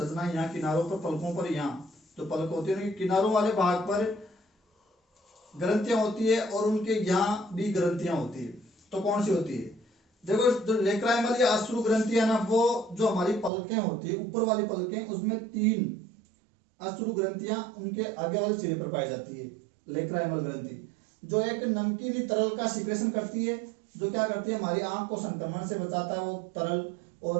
यहाँ किनारों पर, पलकों पर यहाँ जो पलक होती है, किनारों वाले भाग पर ग्रंथियां होती है, और उनके यहाँ भी ग्रंथियां होती है। तो कौन सी होती है? देखो, जो लेक्राइमल या अश्रु ग्रंथि है ना, वो जो हमारी पलकें होती है, ऊपर वाली पलकें, उसमें 3 अश्रु ग्रंथियां उनके आगे वाले सिरे पर पाई जाती है। लेक्राइमल ग्रंथि जो एक नमकीनी तरल का सिक्रेशन करती है, जो क्या करती है, हमारी आंख को संक्रमण से बचाता है वो तरल,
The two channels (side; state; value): left; drops out; at 13.5 s